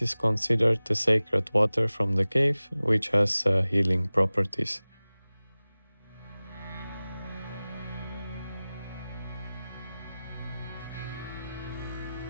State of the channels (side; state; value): both; inverted; correlation -0.98